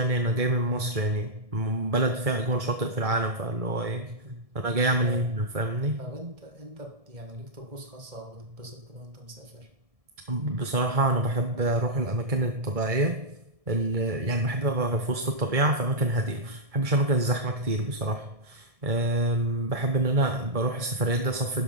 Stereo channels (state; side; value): late; left; 1.7 ms